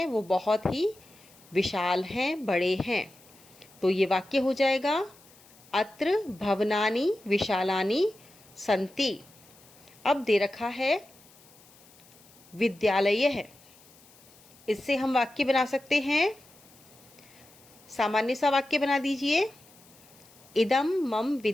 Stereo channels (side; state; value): left; noise; hiss, 26 dB below the sound